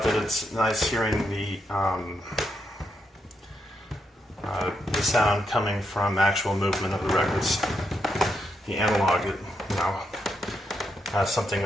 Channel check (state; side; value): normal; both; correlation 0.81